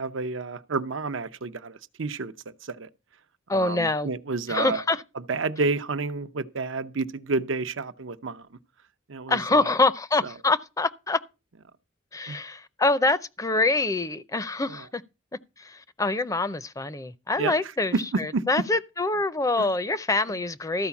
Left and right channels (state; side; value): normal; both; correlation 0.25